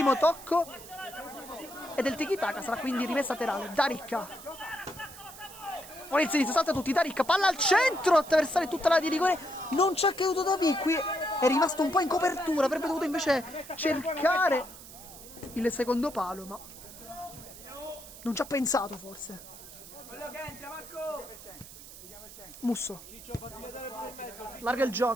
tocco è del tiki-taka, sarà quindi rimessa laterale. D'Aricca, ora il sinistro, salta tutti, D'Aricca, palla al centro, attraversare tutta la di rigore, non ci ha creduto Davi, qui è rimasto un po' in copertura, avrebbe dovuto invece cercare il secondo palo, ma non ci ha pensato forse. Musso, larga il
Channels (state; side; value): noise; right; hiss, 16 dB below the sound